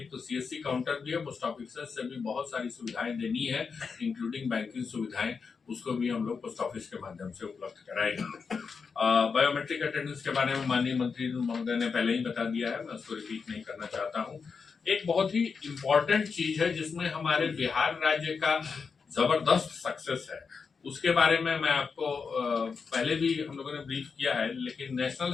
तो सीएससी काउंटर भी है, पोस्ट ऑफिसर्स से भी बहुत सारी सुविधाएं देनी है, इंक्लूडिंग बैंकिंग सुविधाएं, उसको भी हम लोग पोस्ट ऑफिस के माध्यम से उपलब्ध कराएंगे। बायोमेट्रिक अटेंडेंस के बारे में माननीय मंत्री महोदय ने पहले ही बता दिया है, मैं उसको रिपीट नहीं करना चाहता हूँ। एक बहुत ही इम्पोर्टेंट चीज है जिसमें हमारे बिहार राज्य का जबरदस्त सक्सेस है, उसके बारे में मैं आपको पहले भी हम लोगों ने ब्रीफ किया है, लेकिन नेशनल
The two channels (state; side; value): quieter; right; 5.4 dB